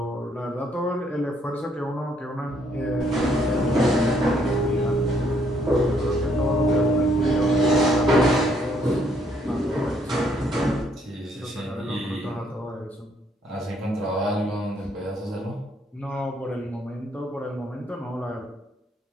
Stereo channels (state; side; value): normal; both; correlation 0.69